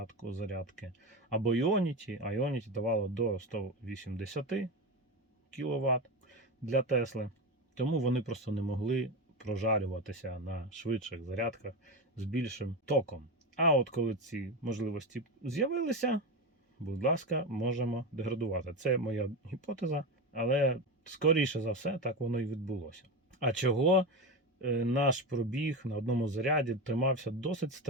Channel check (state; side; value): normal; both; correlation 0.19